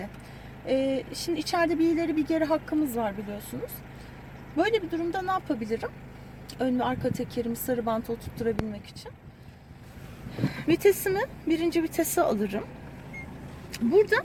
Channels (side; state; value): both; identical; correlation 1.00